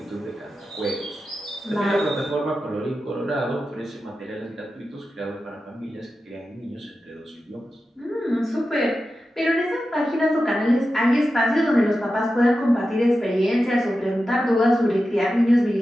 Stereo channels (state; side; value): normal; both; correlation 0.92